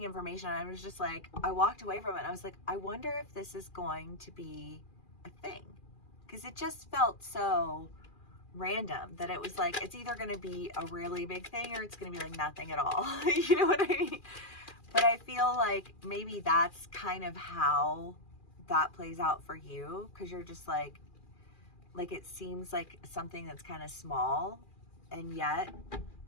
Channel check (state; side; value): late; right; 2.4 ms